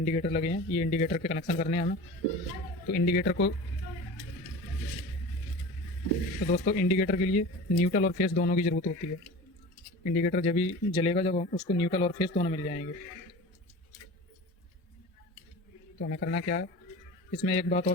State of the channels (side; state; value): both; normal; correlation 0.35